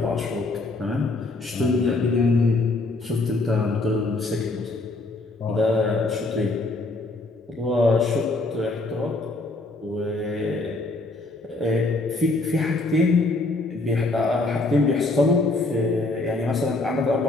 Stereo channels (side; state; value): right; quieter; 3.1 dB